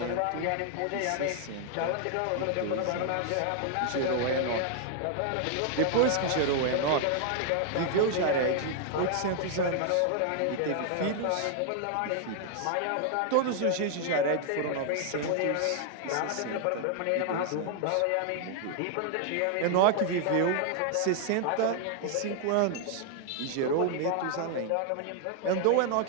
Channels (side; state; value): both; different; correlation 0.00